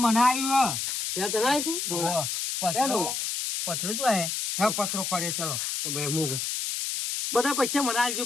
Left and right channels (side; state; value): left; noise; hiss, 2 dB below the sound